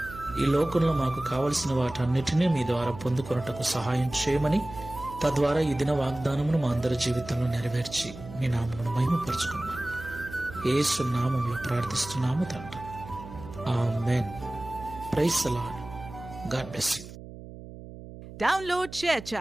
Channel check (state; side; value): noise; right; hum, 14 dB below the sound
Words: ఈ లోకంలో మాకు కావలసిన వాటన్నిటినీ మీ ద్వారా పొందుకొనుటకు సహాయం చేయమని, తద్వారా ఈ దిన వాగ్దానమును మా అందరి జీవితంలో నెరవేర్చి మీ నామమును మహిమపరచుకున్నామని యేసు నామములో ప్రార్థిస్తున్నాము తండ్రి. Amen. Praise the Lord. God bless you. Download